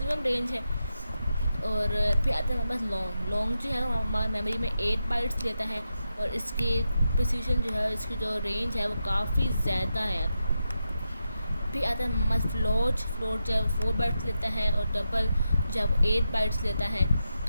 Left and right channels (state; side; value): inverted; both; correlation -0.87